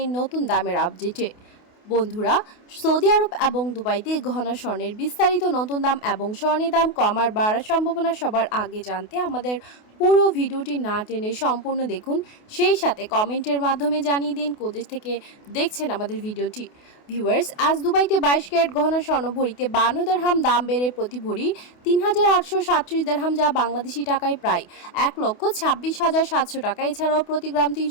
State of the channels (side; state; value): right; late; 28 ms